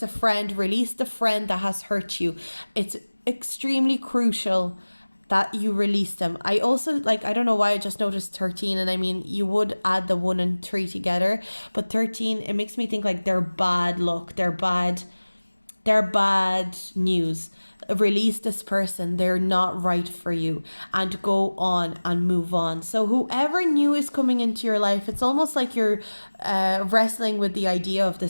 a friend, release the friend that has hurt you. It's extremely crucial that you release them. I also, I don't know why I just noticed 13, and I mean, you would add the 1 and 3 together, but 13, it makes me think like they're bad luck, they're bad news. Release this person, they're not right for you, and go on and move on. So whoever new is coming into your life, it's almost like you're wrestling with the idea of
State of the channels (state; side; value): inverted; both; correlation -1.00